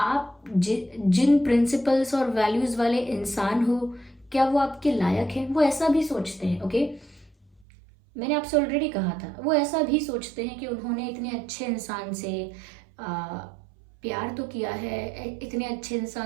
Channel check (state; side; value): drops out; left; at 7.7 s